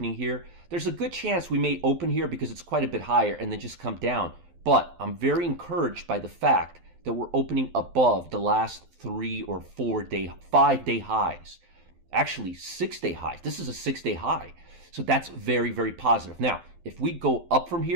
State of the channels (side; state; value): left; late; 12 ms